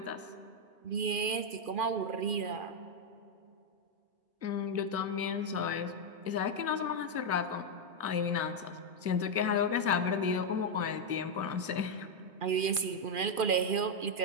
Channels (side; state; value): left; late; 2.4 ms